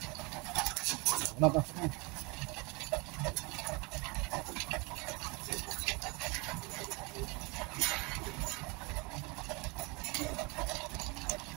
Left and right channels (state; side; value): quieter; left; 27.9 dB